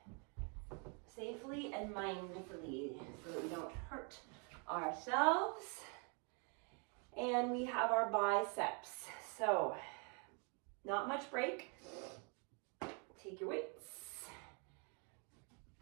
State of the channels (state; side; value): quieter; left; 36.8 dB